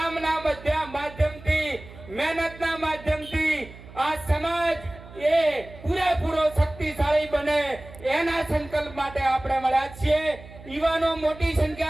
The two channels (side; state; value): right; noise; hum, 18 dB below the sound